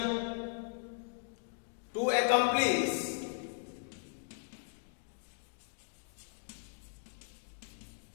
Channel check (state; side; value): silent; right; digital silence